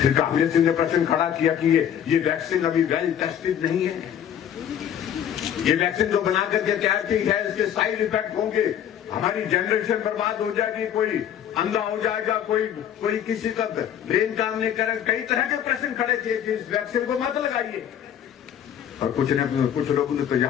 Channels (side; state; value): right; quieter; 9.6 dB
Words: फिर कांग्रेस ने प्रश्न खड़ा किया कि ये वैक्सीन अभी वेल टेस्टेड नहीं है। ये वैक्सीन जो बना करके तैयार की है, इसके साइड इफेक्ट होंगे, हमारी जनरेशन बर्बाद हो जाएगी, कोई अंधा हो जाएगा, कोई किसी का ब्रेन काम नहीं करेगा। कई तरह के प्रश्न खड़े किए कि इस वैक्सीन को मत लगाइए। और कुछ लोगों ने तो